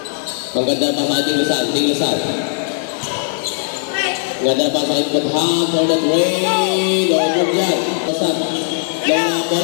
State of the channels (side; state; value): right; silent; digital silence